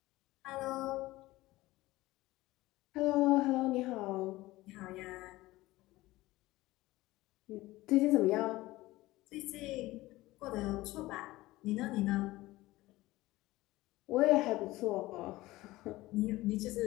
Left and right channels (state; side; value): quieter; right; 18.4 dB